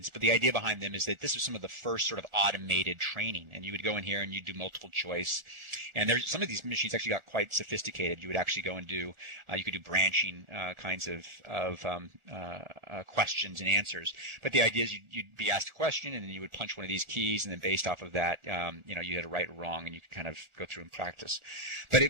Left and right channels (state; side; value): late; left; 1.4 ms